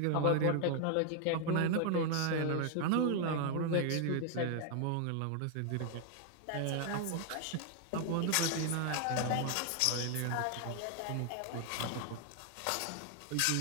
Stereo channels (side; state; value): both; different; correlation 0.00